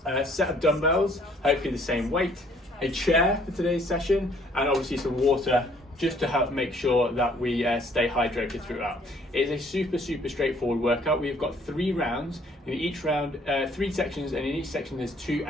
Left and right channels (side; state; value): both; normal; correlation 0.61